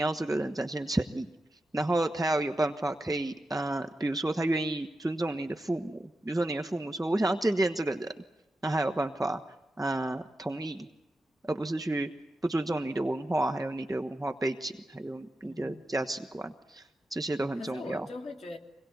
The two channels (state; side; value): normal; both; correlation 0.90